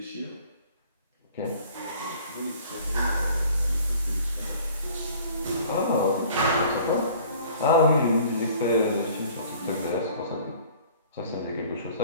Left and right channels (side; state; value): both; inverted; correlation -0.51